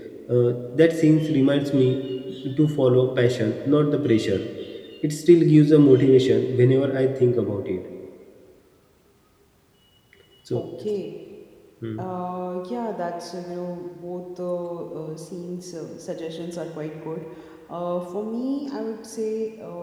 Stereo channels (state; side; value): identical; both; correlation 1.00